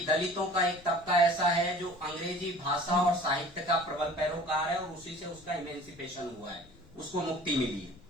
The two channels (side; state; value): left; noise; rumble, 24 dB below the sound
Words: दलितों का एक तबका ऐसा है जो अंग्रेजी भाषा और साहित्य का प्रबल पैरोकार है और उसी से उसका इमेंसिपेशन हुआ है, उसको मुक्ति मिली है।